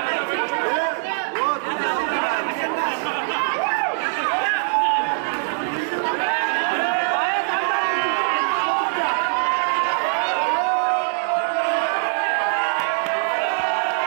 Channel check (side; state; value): left; silent; digital silence